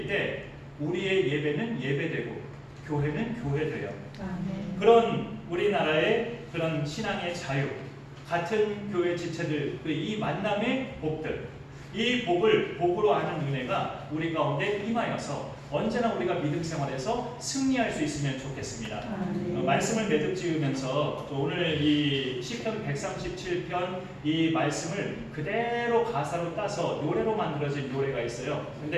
때 우리의 예배는 예배되고 교회는 교회돼요. 그런 우리나라의 그런 신앙의 자유, 같은 교회 지체들, 이 만남의 복들, 이 복을 복으로 아는 은혜가 우리 가운데 임하여서 언제나 우리가 믿음 생활에서 승리할 수 있으면 좋겠습니다. 말씀을 매듭 지으면서 오늘 이 시편 137편 이 말씀을 그대로 가사로 따서 노래로 만들어진 노래가 있어요.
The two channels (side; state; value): both; identical; correlation 1.00